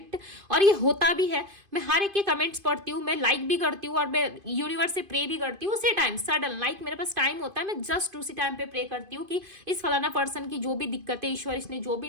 और ये होता भी है, मैं हर एक के कमेंट्स पढ़ती हूँ, मैं लाइक भी करती हूँ और मैं यूनिवर्स से प्रे भी करती हूँ उसी टाइम, सडन लाइक मेरे पास टाइम होता है, मैं जस्ट उसी टाइम पे प्रे करती हूँ कि इस फलाना पर्सन की जो भी दिक्कतें, ईश्वर इसने जो भी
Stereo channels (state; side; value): late; left; 2.5 ms